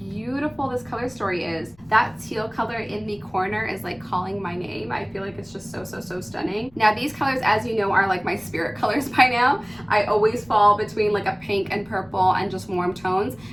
this color story is. That teal color in the corner is like calling my name. I feel like it's just so stunning. Now these colors, as you know, are like my spirit colors by now. I always fall between like a pink and purple and just warm tones.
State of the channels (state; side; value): noise; left; rumble, 26 dB below the sound